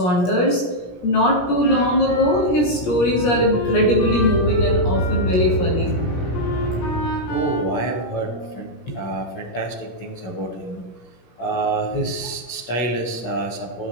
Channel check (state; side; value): late; right; 17 ms